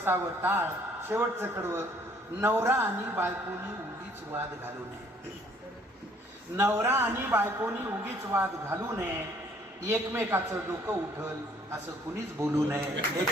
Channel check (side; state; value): both; normal; correlation 0.61